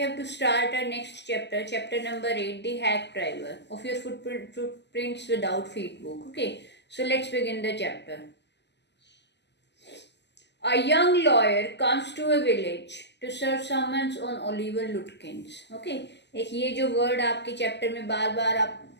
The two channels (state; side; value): late; right; 0.50 ms